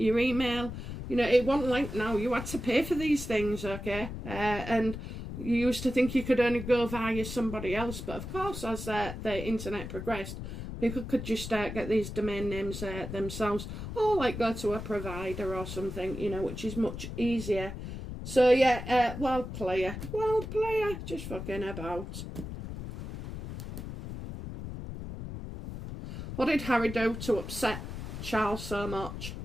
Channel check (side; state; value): left; noise; rumble, 8 dB below the sound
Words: email. You know, it wasn't like now. You had to pay for these things, okay? And you used to think you could only go via somebody else. But, of course, as the internet progressed, people could just get these domain names themselves. Or, like, go to a provider or something, you know, which is much easier. So, yeah, wild player, just fucking about. What did Harry do to upset Charles so much?